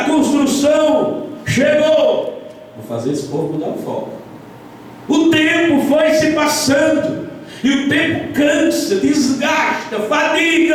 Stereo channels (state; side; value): identical; both; correlation 1.00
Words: construção chegou. Vou fazer esse povo mudar o foco. O tempo foi se passando. E o tempo cansa, desgasta,